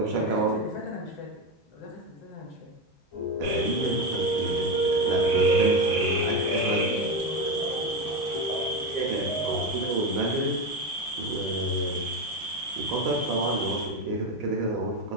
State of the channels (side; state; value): both; normal; correlation 0.15